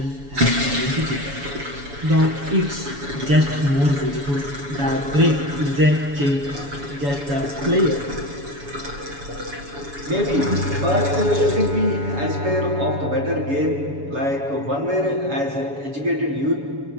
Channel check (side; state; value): left; late; 7.1 ms